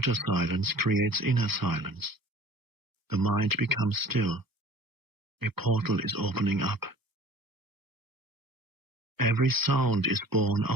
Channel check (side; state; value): left; late; 1.3 ms